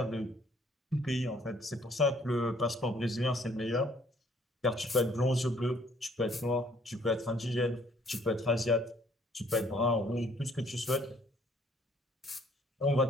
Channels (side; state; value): both; normal; correlation 0.62